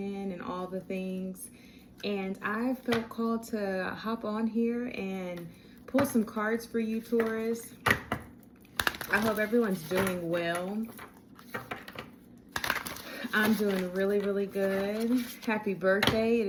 and all the things. And I felt called to hop on here and pull some cards for you, Taurus. I hope everyone's doing well. I'm doing really, really good. Happy birthday. It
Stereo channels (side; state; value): both; identical; correlation 1.00